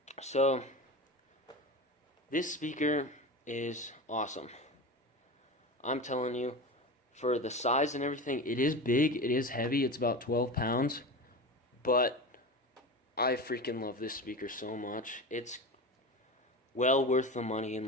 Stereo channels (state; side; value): normal; both; correlation 0.27